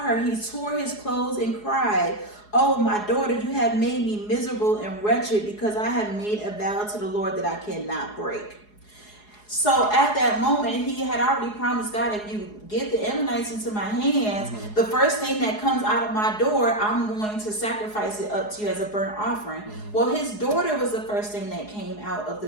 he tore his clothes and cried, oh, my daughter, you have made me miserable and wretched, because I have made a vow to the Lord that I cannot break. So at that moment, he had already promised God, if you get the Ammonites into my hands, the first thing that comes out of my door, I'm going to sacrifice it up to you as a burnt offering. Well, his daughter was the first thing that came out of the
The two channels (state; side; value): late; right; 4.8 ms